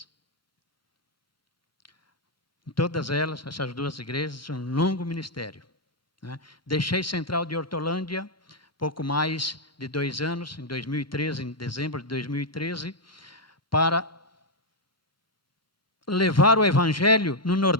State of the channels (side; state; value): both; normal; correlation -0.01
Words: Em todas elas, essas 2 igrejas, um longo ministério. Deixei Central de Hortolândia, pouco mais de 2 anos, em 2013, em dezembro de 2013, para levar o Evangelho no